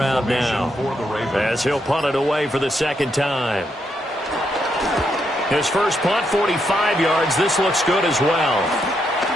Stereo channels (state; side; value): normal; both; correlation 0.79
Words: now, as he'll punt it away for the 2nd time. His first punt, 45 yards. This looks good as well.